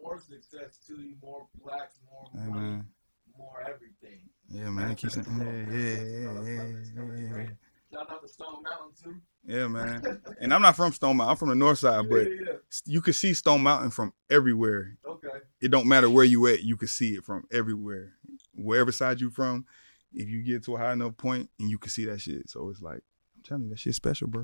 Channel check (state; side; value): inverted; both; correlation -1.00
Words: success to you, more plaques, more money, more everything. Yeah, manifest it all. Manifest it all. It's coming. It's coming. It's raining. Shouts out to Stone Mountain too. Yeah, man. And I'm not from Stone Mountain. I'm from the north side. Yeah. You can see Stone Mountain from everywhere. Okay. It don't matter where you at. You can see it from everywhere. Wherever side you from, if you get to a high enough point, and you can see that shit. So it's like, I'm telling you, that shit's special, bro.